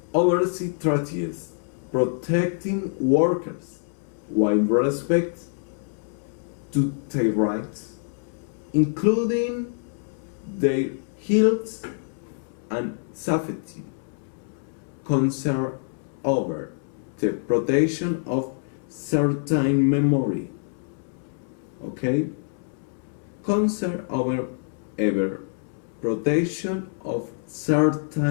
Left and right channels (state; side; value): silent; right; 61 dB below the other